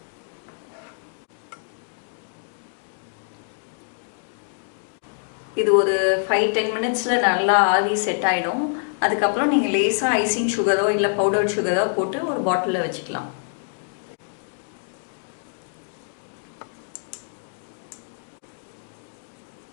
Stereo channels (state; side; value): silent; right; digital silence